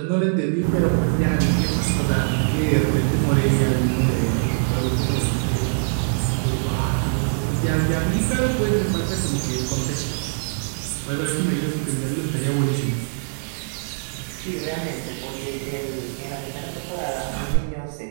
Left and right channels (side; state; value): left; silent; digital silence